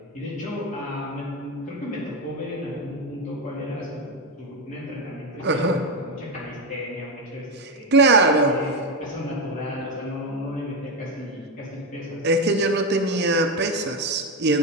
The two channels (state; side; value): normal; both; correlation 0.11